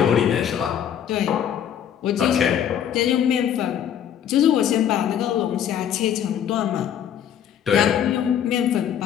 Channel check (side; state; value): right; quieter; 9.5 dB